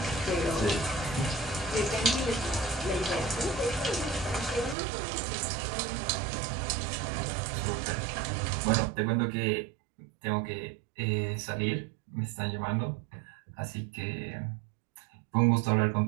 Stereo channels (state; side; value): drops out; left; at 4.8 s